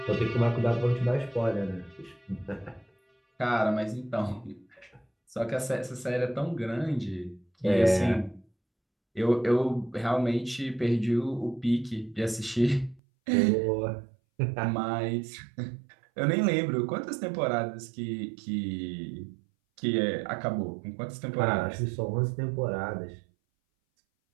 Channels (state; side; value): drops out; left; at 13.0 s